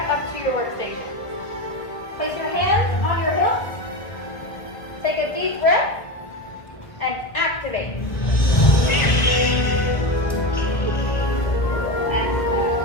up to your workstation. Place your hands on your hips. Take a deep breath. And activate. And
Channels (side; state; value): right; late; 1.6 ms